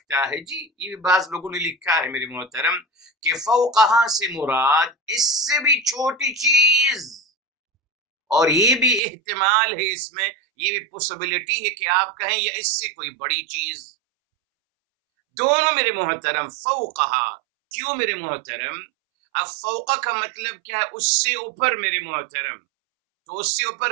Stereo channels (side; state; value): left; drops out; at 9.0 s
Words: ہے، جی یہ بعض لوگوں نے لکھا ہے میرے محترم کہ فوقہا سے مراد اس سے بھی چھوٹی چیز، اور یہ بھی احتمال ہے اس میں، یہ بھی پوسیبلٹی ہے کہ آپ کہیں یا اس سے کوئی بڑی چیز، دونوں میرے محترم فوقہا، کیوں میرے محترم؟ اب فوقہ کا مطلب کیا ہے؟ اس سے اوپر میرے محترم، تو اس سے